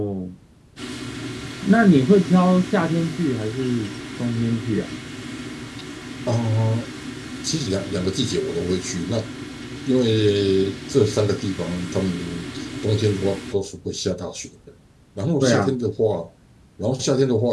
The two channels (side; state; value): both; identical; correlation 1.00